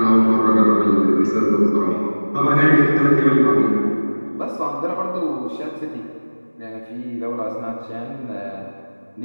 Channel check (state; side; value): inverted; both; correlation -1.00